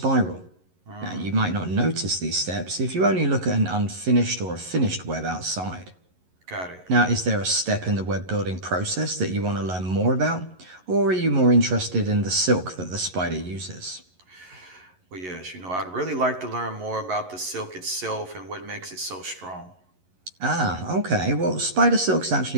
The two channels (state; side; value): late; left; 11 ms